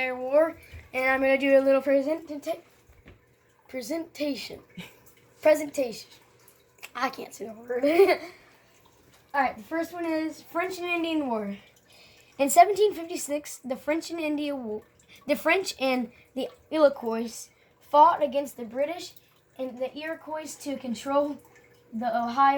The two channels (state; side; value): identical; both; correlation 1.00